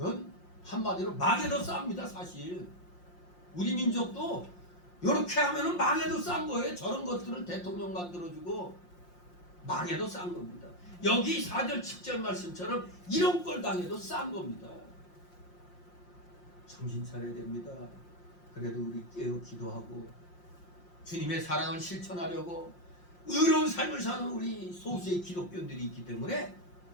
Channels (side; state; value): right; late; 5.6 ms